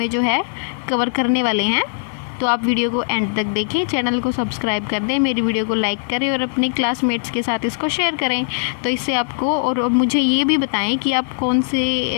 जो है कवर करने वाले हैं। तो आप वीडियो को एंड तक देखें, चैनल को सब्सक्राइब कर दें, मेरी वीडियो को लाइक करें और अपने क्लासमेट्स के साथ इसको शेयर करें। तो इससे आपको, और मुझे ये भी बताएं कि आप कौन से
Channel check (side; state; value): right; silent; digital silence